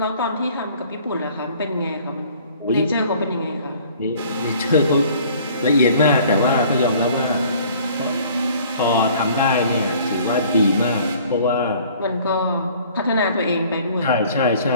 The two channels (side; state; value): both; inverted; correlation -0.53